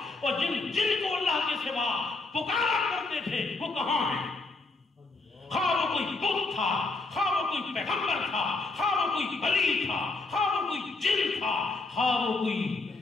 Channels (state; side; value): quieter; right; 3.4 dB